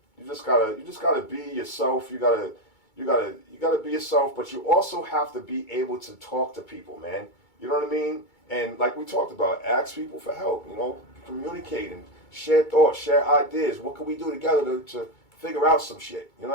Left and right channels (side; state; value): right; late; 2.2 ms